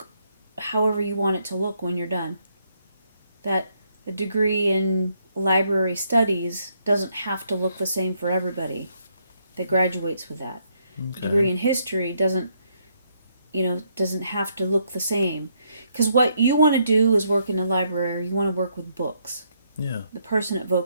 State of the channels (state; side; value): inverted; both; correlation -0.74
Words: however you want it to look when you're done. That a degree in library studies doesn't have to look the same for everybody that graduates with that. Okay. A degree in history doesn't have to look the same. Because what you want to do is work in a library, you want to work with books. Yeah. The person at